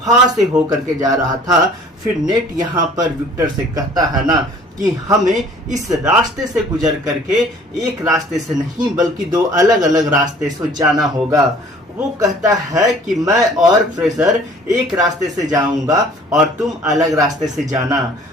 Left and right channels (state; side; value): normal; both; correlation 0.52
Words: से होकर के जा रहा था। फिर नेट यहाँ पर विक्टर से कहता है ना कि हमें इस रास्ते से गुजर करके एक रास्ते से नहीं बल्कि दो अलग अलग रास्ते से जाना होगा। वो कहता है कि मैं और फ्रेशर एक रास्ते से जाऊंगा और तुम अलग रास्ते से जाना।